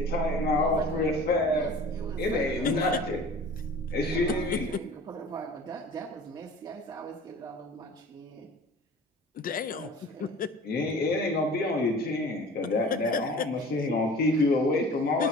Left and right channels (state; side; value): normal; both; correlation 0.43